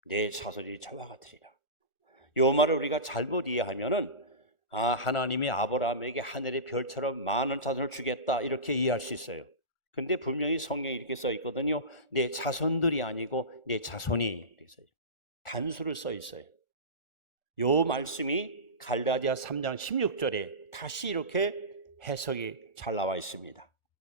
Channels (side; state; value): right; late; 1.4 ms